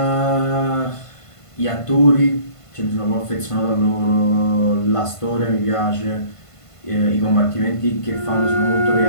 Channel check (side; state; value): right; late; 1.5 ms